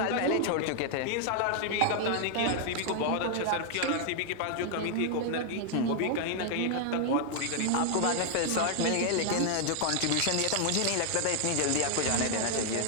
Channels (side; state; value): both; different; correlation 0.00